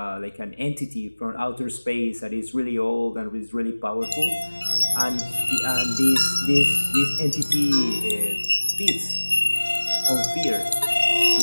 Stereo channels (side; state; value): both; inverted; correlation -1.00